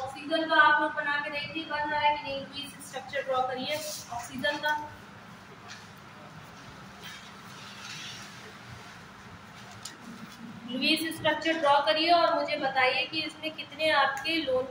का आप लोग बना के देखिए बन रहा है कि नहीं, प्लीज स्ट्रक्चर ड्रॉ करिए ऑक्सीजन का। लुईस स्ट्रक्चर ड्रॉ करिए और मुझे बताइए कि इसमें कितने आपके लोन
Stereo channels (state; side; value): identical; both; correlation 1.00